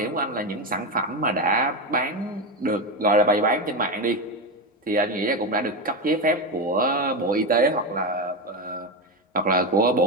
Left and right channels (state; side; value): normal; both; correlation 0.14